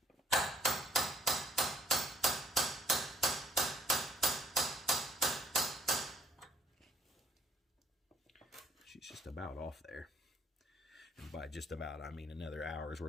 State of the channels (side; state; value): both; normal; correlation 0.64